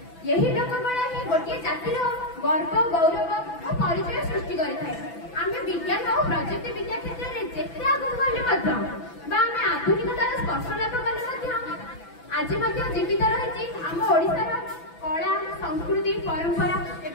यही लोककला ही गोटे जातिर गर्व गौरव और परिचय सृष्टि करिଥାଏ। आमे विज्ञान और प्रजुक्ति विद्या क्षेत्र में जेते आगु गले मध्य बा आमे आधुनिकतार स्पर्श लाभ कले मध्य आज मध्य जीवित रहिछि आम ओडिसार कला संस्कृति परंपरा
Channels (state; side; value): late; right; 6.0 ms